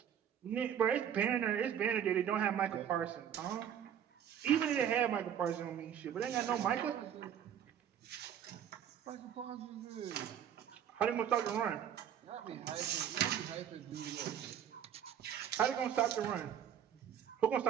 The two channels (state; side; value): quieter; left; 9.4 dB